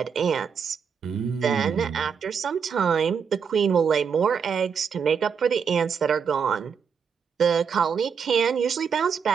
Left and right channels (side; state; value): left; quieter; 6.6 dB